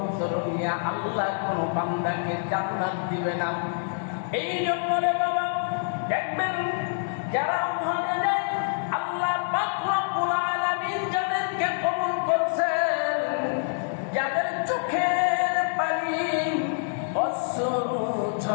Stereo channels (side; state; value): right; silent; digital silence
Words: নিয়া আল্লাহ কোন বান্দাকে জান্নাত দিবে না। এই জন্য রে বাবা দেখবেন যারা ওখানে যায়, আল্লাহ পাক রব্বুল আলামিন যাদেরকে কবুল করছেন, যাদের চোখের পানি অশ্রু